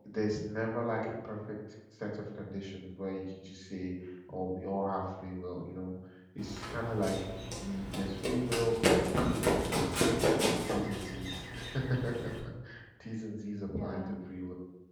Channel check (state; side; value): identical; both; correlation 1.00